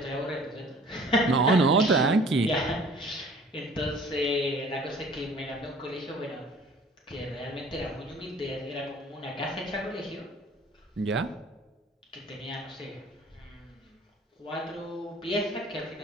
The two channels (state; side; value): normal; both; correlation 0.51